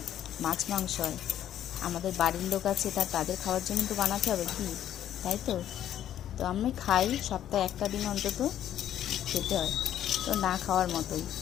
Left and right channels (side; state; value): right; quieter; 11.1 dB